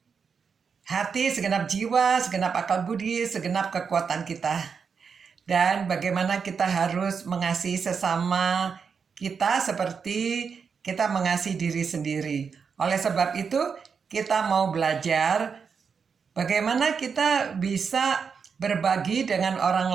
hati, segenap jiwa, segenap akal budi, segenap kekuatan kita. Dan bagaimana kita harus mengasihi sesama kita seperti kita mengasihi diri sendiri. Oleh sebab itu, kita mau belajar bagaimana kita bisa berbagi dengan orang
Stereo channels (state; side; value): quieter; left; 6.0 dB